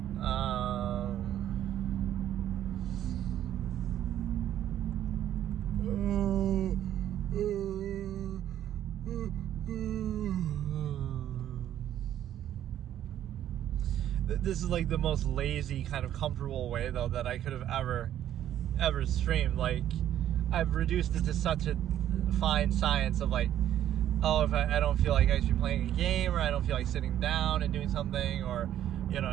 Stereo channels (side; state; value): left; quieter; 11.4 dB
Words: this is like the most lazy, kind of comfortable way, though, that I could have ever streamed. Like, I've reduced it to such a fine science of like, oh, if I don't feel like actually playing a game, or I don't feel like sitting down and doing something, or, you know,